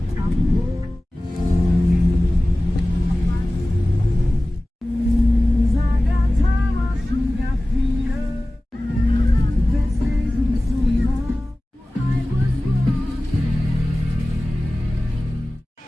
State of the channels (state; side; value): normal; both; correlation 0.97